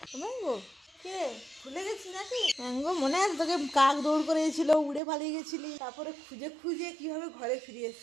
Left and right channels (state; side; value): drops out; left; at 5.0 s